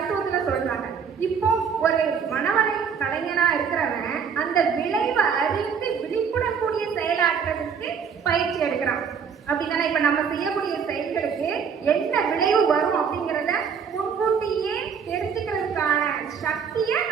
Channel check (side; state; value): left; quieter; 6.6 dB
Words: சொல்றாங்க. இப்போ ஒரு மனவளை கலைஞனா இருக்கிறவன் அந்த விளைவை அறிந்து விழிப்புணக்கூடிய செயலாற்றுறதுக்கு பயிற்சி எடுக்கிறான். அப்படின்னா இப்ப நம்ம செய்யக்கூடிய செயல்களுக்கு என்ன விளைவு வரும் அப்படிங்கிறத முன்கூட்டியே தெரிஞ்சுக்கிறதுக்கான சக்தியை